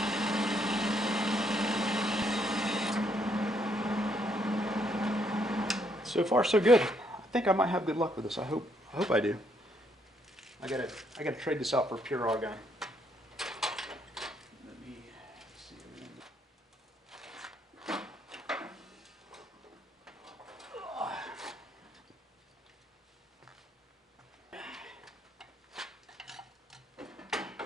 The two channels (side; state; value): both; normal; correlation 0.72